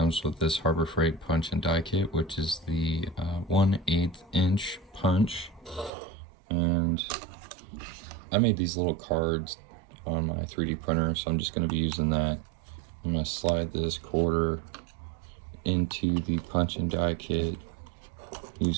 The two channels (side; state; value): left; drops out; at 5.9 s